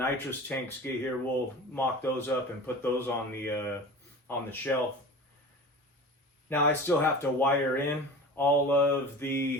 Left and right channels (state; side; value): normal; both; correlation 0.35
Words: tanks get here, we'll mock those up and put those on the shelf. Now I still have to wire in all of